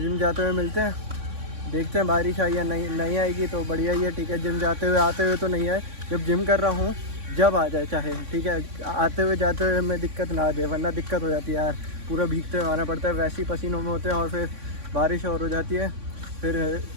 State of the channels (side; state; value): left; late; 3.6 ms